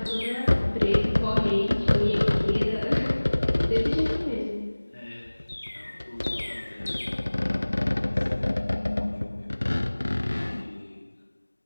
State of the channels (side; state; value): both; inverted; correlation -1.00